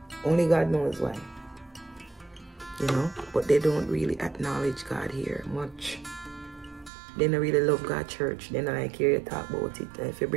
Only God knows why. You know? But they don't really acknowledge God here much. They don't really love God church. They don't like hear you talk about it. If you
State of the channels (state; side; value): drops out; left; at 6.9 s